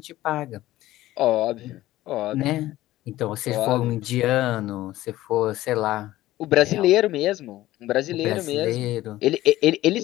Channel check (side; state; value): right; quieter; 15.8 dB